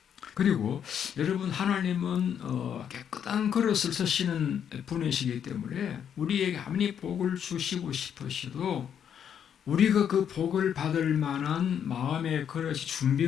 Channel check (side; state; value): right; quieter; 8.5 dB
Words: 그리고 여러분 하나님은 깨끗한 그릇을 쓰시는 분이시기 때문에 우리에게 아무리 복을 주시고 싶으셔도 우리가 그 복을 받을 만한 마음의 그릇이